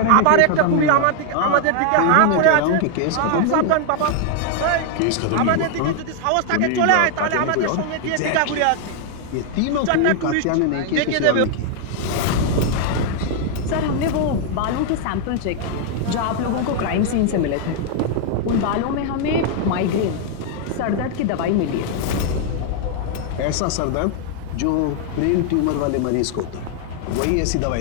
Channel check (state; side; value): different; both; correlation 0.00